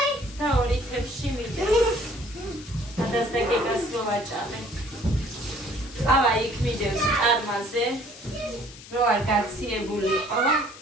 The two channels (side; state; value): left; noise; hiss, 18 dB below the sound